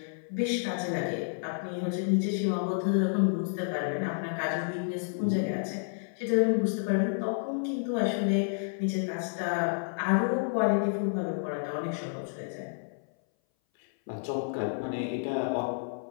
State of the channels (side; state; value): right; silent; 58 dB below the other